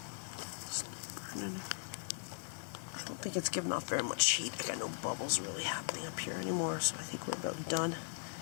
I don't think it's giving off very much heat. I got no bubbles really happening up here anymore, so I think we're about done.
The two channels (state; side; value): silent; right; digital silence